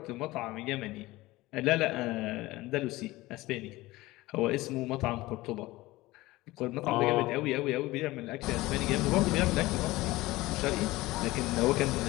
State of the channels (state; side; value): quieter; right; 19.2 dB